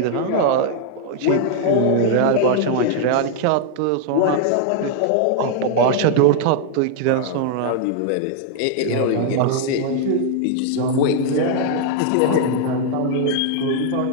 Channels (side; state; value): both; different; correlation 0.00